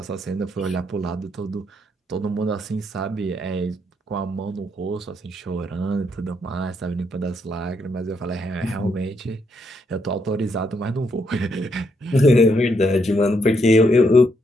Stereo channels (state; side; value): normal; both; correlation 0.76